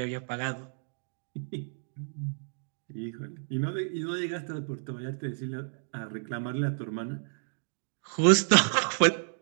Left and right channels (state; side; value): silent; left; digital silence